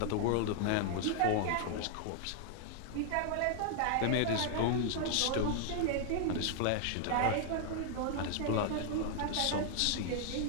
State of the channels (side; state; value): both; different; correlation 0.00